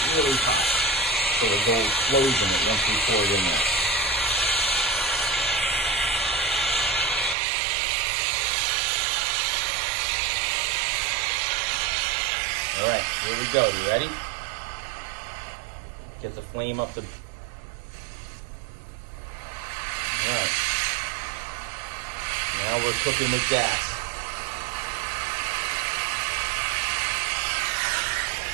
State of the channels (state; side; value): drops out; left; at 7.4 s